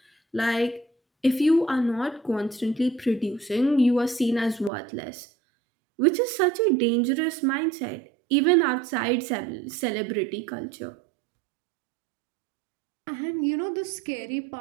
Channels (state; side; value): drops out; left; at 4.7 s